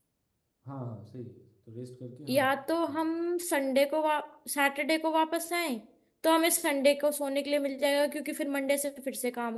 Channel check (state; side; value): identical; both; correlation 1.00